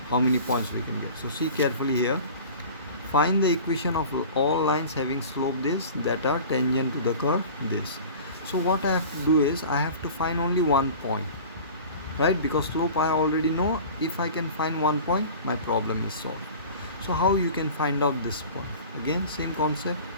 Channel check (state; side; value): inverted; both; correlation -0.39